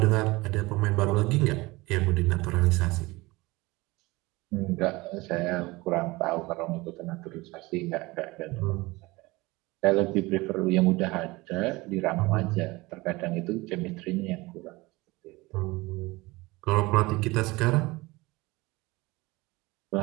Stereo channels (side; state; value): left; quieter; 22.0 dB